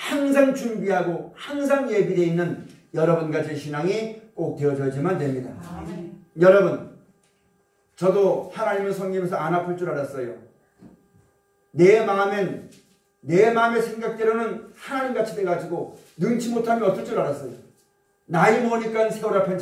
준비하고 항상 예비되어 있는 여러분과 제 신앙이 꼭 되어져야지만 됩니다. 여러분, 저도 하나님을 섬기면서 안 아플 줄 알았어요. 내 마음의 생각대로는 하나님같이 돼가지고 능치 못하면 어떨 줄 알았어요. 나이 먹으니까 세월 앞엔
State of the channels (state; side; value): identical; both; correlation 1.00